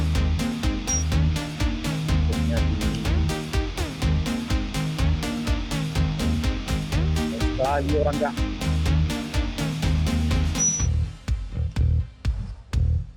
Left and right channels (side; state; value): both; identical; correlation 1.00